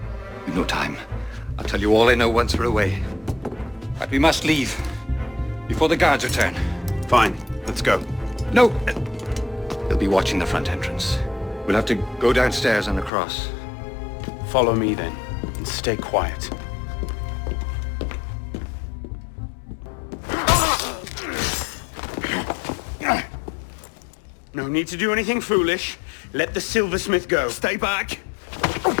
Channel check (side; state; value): right; drops out; at 13.1 s